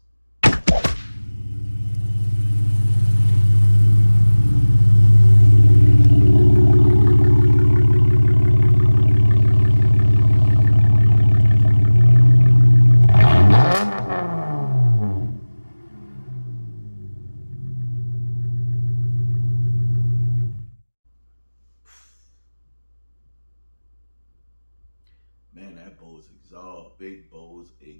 man, that Bose exhaust, big Bose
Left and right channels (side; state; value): both; inverted; correlation -1.00